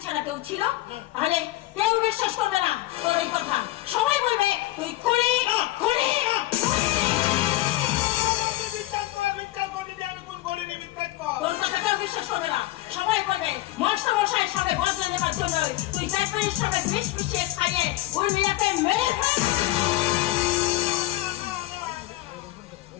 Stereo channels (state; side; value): quieter; right; 17.1 dB